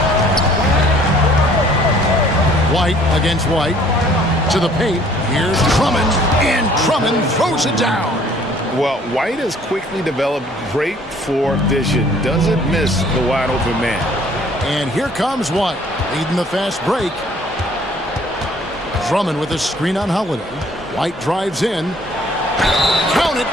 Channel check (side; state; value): both; normal; correlation 0.57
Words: White against White. To the paint. Here's Drummond. And Drummond throws it down. Well, White has quickly developed great floor vision. Doesn't miss the wide open man. And here comes White, leading the fast break. Drummond with a screen on Holiday. White drives in. Count it,